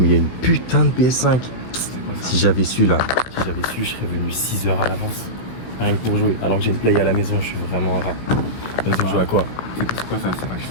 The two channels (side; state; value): right; late; 16 ms